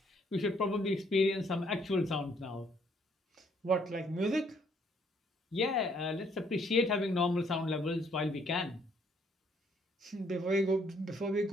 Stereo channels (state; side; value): normal; both; correlation 0.66